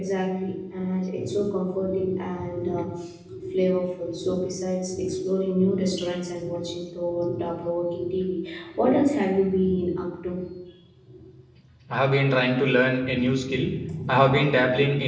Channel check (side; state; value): both; identical; correlation 1.00